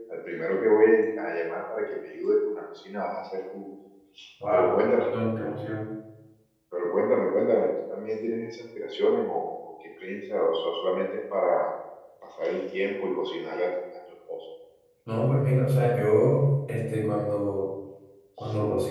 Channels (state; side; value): identical; both; correlation 1.00